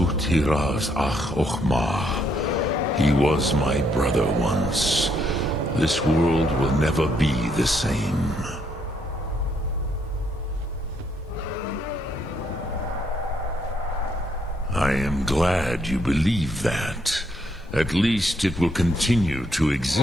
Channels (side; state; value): both; normal; correlation 0.73